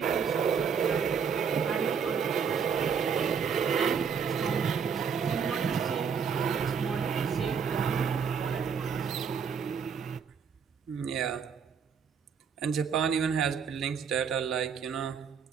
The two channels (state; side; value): quieter; left; 6.6 dB